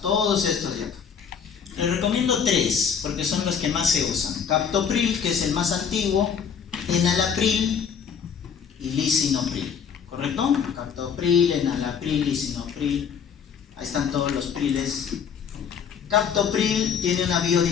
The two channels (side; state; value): right; quieter; 7.1 dB